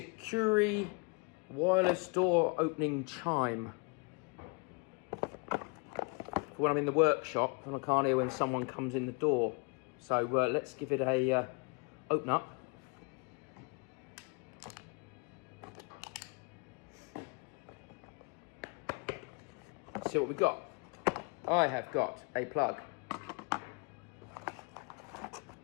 wireless door opening chime. For when I'm in the workshop and I can't hear when someone comes in the door. So let's give it a open up. Let's see what we've got. I have got a plug.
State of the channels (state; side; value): quieter; right; 34.3 dB